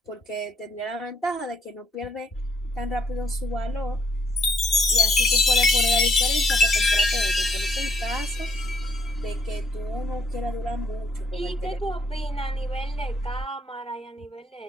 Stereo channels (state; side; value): normal; both; correlation 0.70